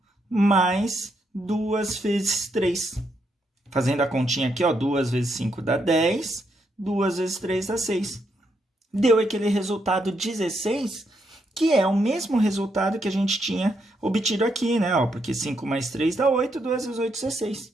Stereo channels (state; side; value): normal; both; correlation 0.78